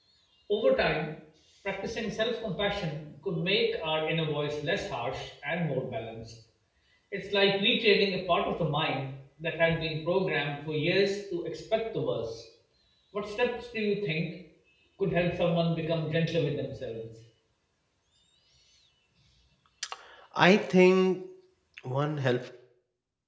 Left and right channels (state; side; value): identical; both; correlation 1.00